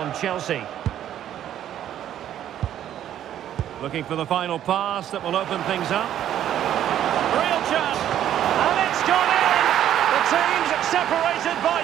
Chelsea. Looking for the final pass that will open things up. Real chance. And it's gone in. The team's separated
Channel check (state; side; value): quieter; left; 11.0 dB